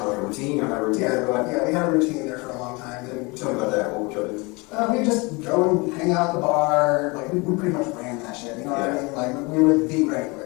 of like a routine? You have a routine? yeah, we had a routine there for a long time. And Tell me about that. What would you do? we just go and hang out at the bar. Like, we pretty much ran that shit, you know what I mean? Like, we were the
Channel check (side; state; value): right; quieter; 26.9 dB